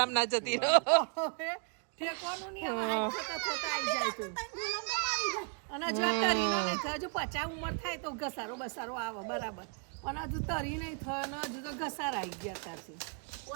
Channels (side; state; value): left; quieter; 38.3 dB